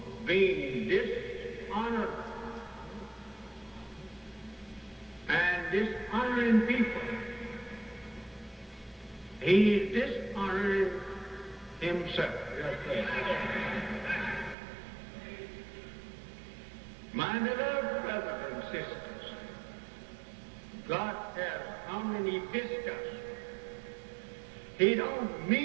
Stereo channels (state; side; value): drops out; left; at 14.6 s